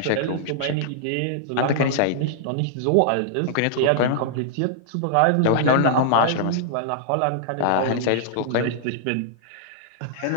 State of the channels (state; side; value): different; both; correlation -0.01